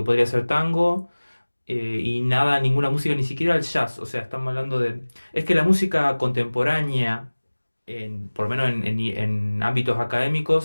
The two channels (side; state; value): both; inverted; correlation -1.00